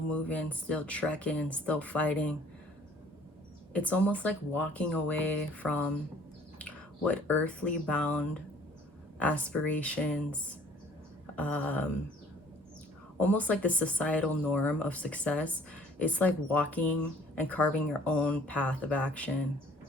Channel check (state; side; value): normal; both; correlation 0.55